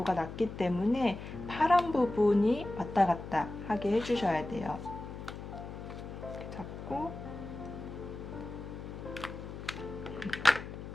낮기 때문에 파란 부분이 왔다 갔다 하게 해주셔야 돼요. 이렇게 잡고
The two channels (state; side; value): noise; left; hum, 10 dB below the sound